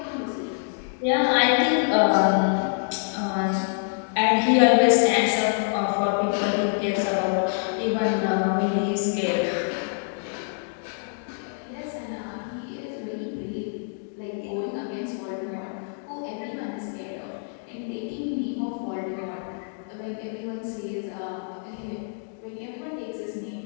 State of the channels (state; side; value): silent; right; digital silence